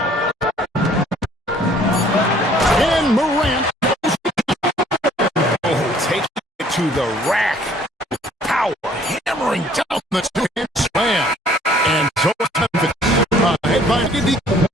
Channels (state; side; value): normal; both; correlation 0.58